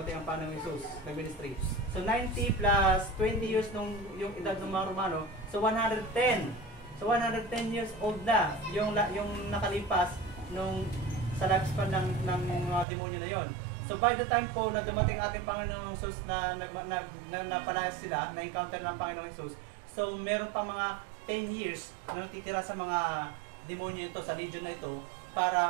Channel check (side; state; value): left; drops out; at 12.9 s